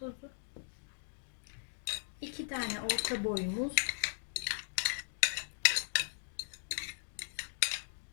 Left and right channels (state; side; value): silent; right; digital silence